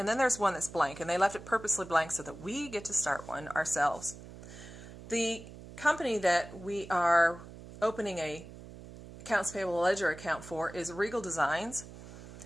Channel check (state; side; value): noise; right; hum, 15 dB below the sound